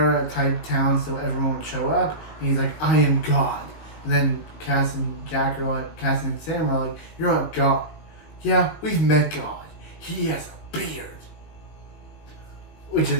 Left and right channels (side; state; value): right; late; 19 ms